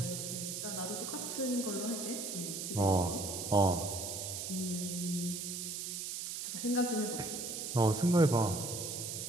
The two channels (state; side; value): noise; right; hiss, 5 dB below the sound